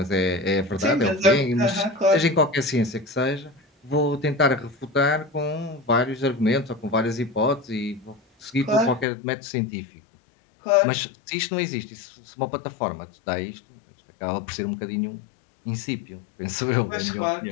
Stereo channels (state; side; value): drops out; right; at 9.1 s